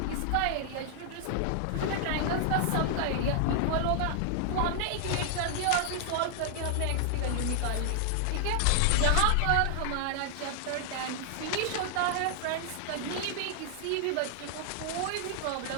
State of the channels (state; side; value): different; both; correlation 0.00